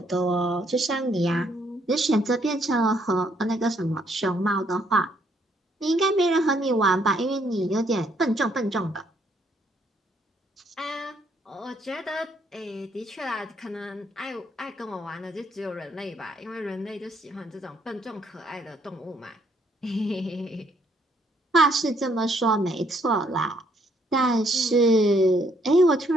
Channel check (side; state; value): both; normal; correlation 0.69